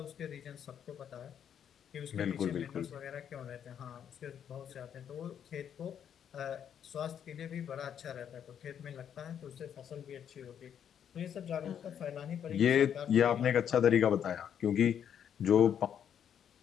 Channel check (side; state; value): right; quieter; 8.8 dB